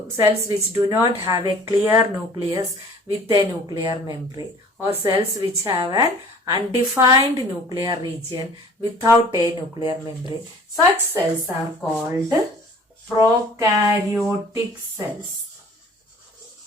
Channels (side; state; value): both; normal; correlation 0.49